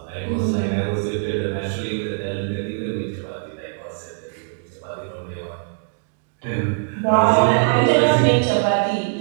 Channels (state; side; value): silent; left; digital silence